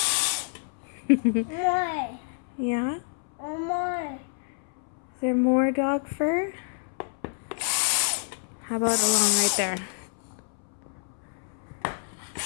More. Yeah? More. Is there more dog fur? How about along right there?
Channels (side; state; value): right; silent; 59 dB below the other